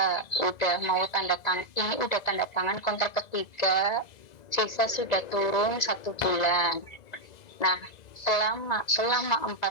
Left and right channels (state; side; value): late; right; 2.0 ms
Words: udah mau tanda tangan, ini udah tanda tangan kontrak ketiga, sisa sudah turun 1 bulan. Nah, selama